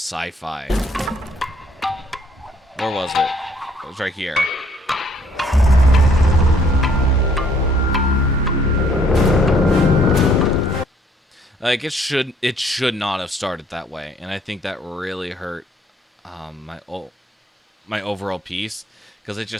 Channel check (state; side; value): normal; both; correlation 0.63